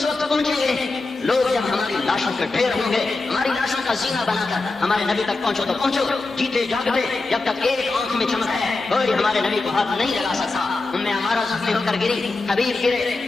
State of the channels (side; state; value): right; quieter; 3.5 dB